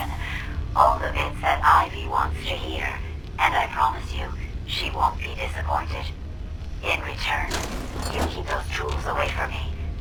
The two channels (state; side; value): identical; both; correlation 1.00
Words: All the bits that Ivy wants to hear. And I promise you, she won't be disappointed. In return, you keep those tools away from me